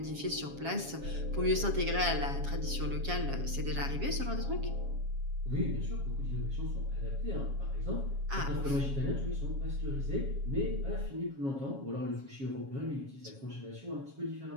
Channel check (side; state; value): left; late; 7.3 ms